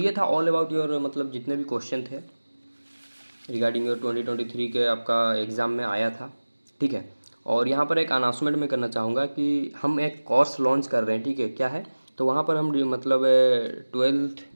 था ऑल अबाउट योर मतलब जितने भी क्वेश्चन थे रिगार्डिंग योर 2023 के आपका एग्ज़ाम में आया था, ठीक है। और यहाँ पर एक अनाउंसमेंट मैं करना चाहूँगा कि हम एक कोर्स लॉन्च कर रहे हैं, ठीक है, क्या है, तो वहाँ पर हम मतलब 12th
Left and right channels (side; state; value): both; inverted; correlation -1.00